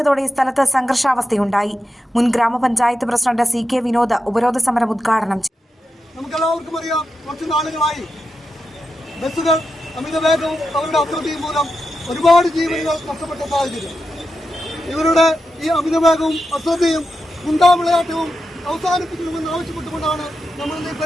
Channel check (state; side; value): normal; both; correlation 0.88